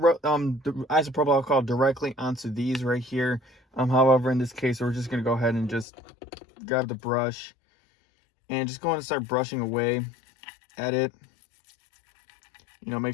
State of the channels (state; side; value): drops out; right; at 5.9 s